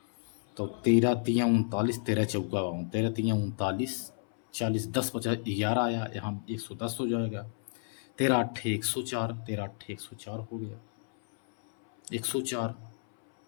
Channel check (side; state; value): right; silent; 57 dB below the other